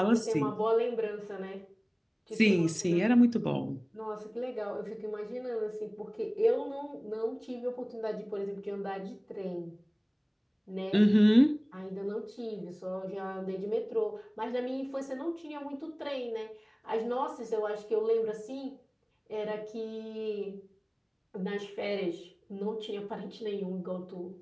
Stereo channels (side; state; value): both; identical; correlation 1.00